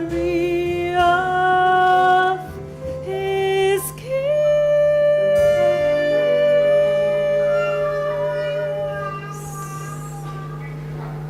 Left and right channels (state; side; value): identical; both; correlation 1.00